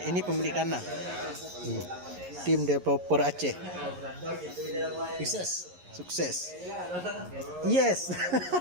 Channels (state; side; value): late; left; 11 ms